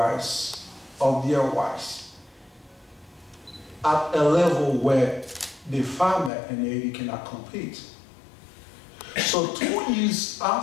of their rice at a level where the farmer in Haiti cannot compete. So 2 years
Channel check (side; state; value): right; drops out; at 6.3 s